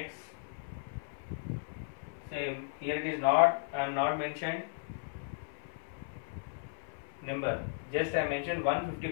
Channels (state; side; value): silent; right; 54 dB below the other